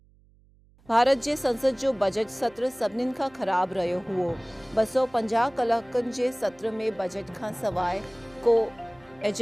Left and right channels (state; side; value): noise; right; hum, 30 dB below the sound